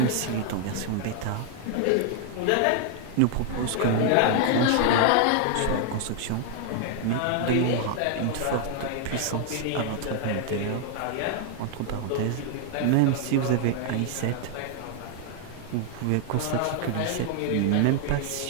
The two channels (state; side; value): different; both; correlation 0.00